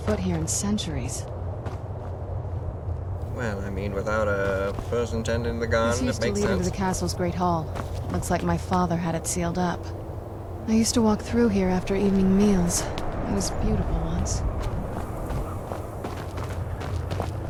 foot here in centuries. Well, I mean, without a person tending the gun, This it used to makes lead into sense. the castle's great hall. Looks like my father had it sealed up. I used to walk through here after evening meals. It was beautiful once.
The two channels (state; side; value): identical; both; correlation 1.00